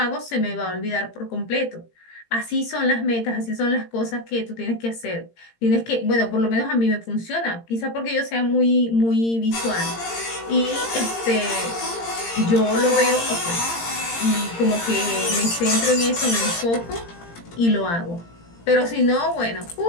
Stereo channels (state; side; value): late; right; 17 ms